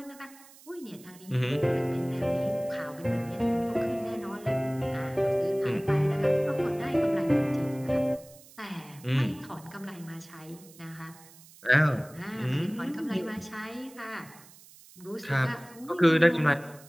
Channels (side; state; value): right; noise; hiss, 22 dB below the sound